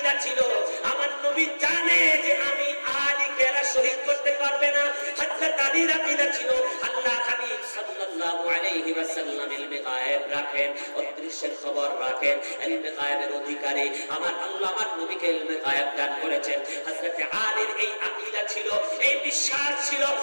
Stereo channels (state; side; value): inverted; both; correlation -1.00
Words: ছিল, আমার নবী জানে যে আমি আলীকে শহীদ করতে পারবে না। হযরতে আলীর আকীদা ছিল আল্লাহ হাবিব সাল্লাল্লাহু আলাইহি ওয়াসাল্লাম ইলমে গায়েব রাখেন, অদৃশ্যের খবর রাখেন, ইলমে গায়েবের অধিকারী আমার আল্লাহ আমার নবীকে ইলমে গায়েব দান করেছেন। হযরতে আলীর এই আকীদা ছিল, এই বিশ্বাস ছিল,